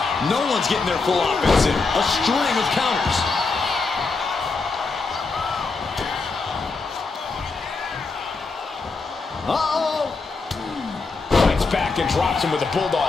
No one's getting their full offense in. A string of counters. Uh-oh! Fights back and drops him with a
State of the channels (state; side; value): quieter; right; 4.1 dB